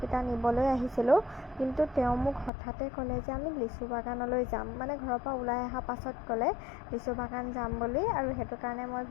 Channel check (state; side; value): drops out; right; at 2.5 s